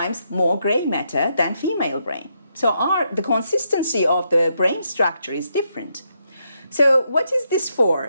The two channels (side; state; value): both; inverted; correlation -0.79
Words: more gray matter than female brain. So the consistency of the brain structure is different. So what is this